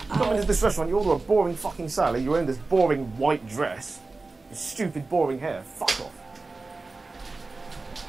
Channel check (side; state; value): left; quieter; 3.6 dB